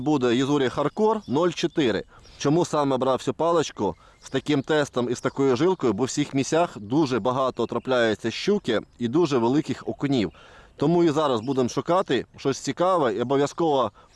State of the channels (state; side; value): identical; both; correlation 1.00